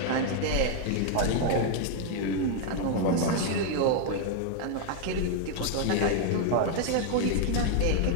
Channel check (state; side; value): different; both; correlation 0.00